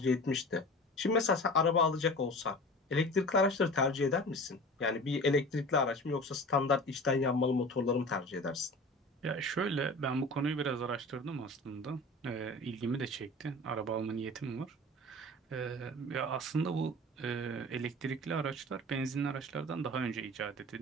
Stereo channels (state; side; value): normal; both; correlation 0.38